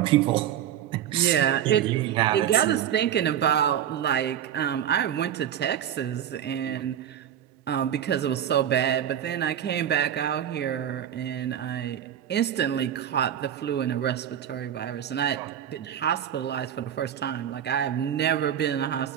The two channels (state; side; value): quieter; left; 10.1 dB